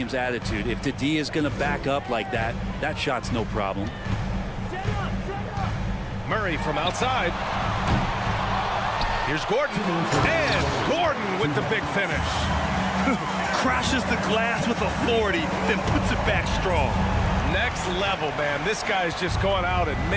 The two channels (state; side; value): identical; both; correlation 1.00